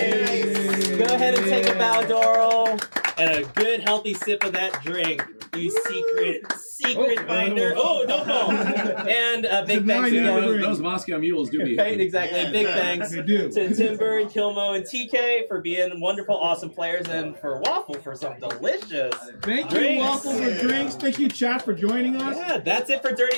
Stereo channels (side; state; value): both; inverted; correlation -1.00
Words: Go ahead and take a bow, Doral. And a good, healthy sip of that drink. You secret finder. Oh, don't fall. And big thanks again. Those Moscow mules do me. Right, exactly. Yeah. Big thanks to Timber and Kilmo and TK for being wonderful, awesome players, and for Waffle for some delicious Thank drinks. you, Waffle, for drinks. Thank you, chat, for joining us. Yeah, that's it for